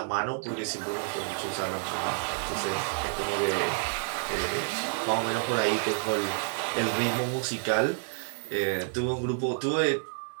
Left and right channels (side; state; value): left; silent; digital silence